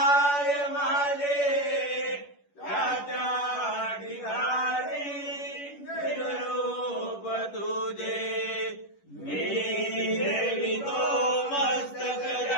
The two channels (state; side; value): late; right; 11 ms